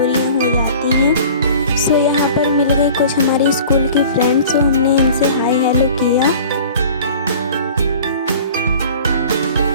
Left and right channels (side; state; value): both; inverted; correlation -0.44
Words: हो जाती हैं। सो यहाँ पर मिल गए कुछ हमारी स्कूल की फ्रेंड्स। तो हमने इनसे हाय हेलो किया।